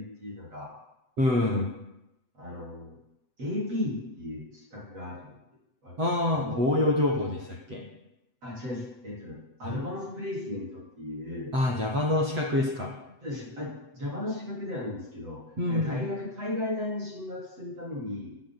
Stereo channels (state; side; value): late; left; 7.9 ms